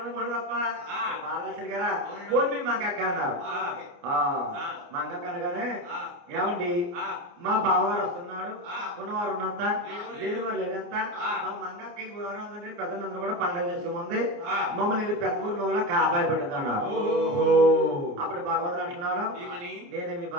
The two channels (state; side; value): late; left; 29 ms